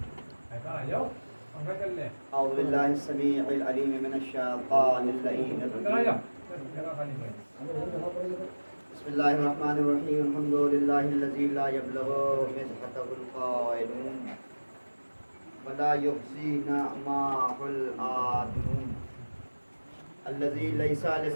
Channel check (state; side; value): inverted; both; correlation -1.00